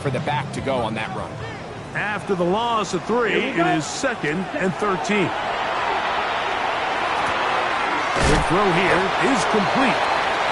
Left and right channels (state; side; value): identical; both; correlation 1.00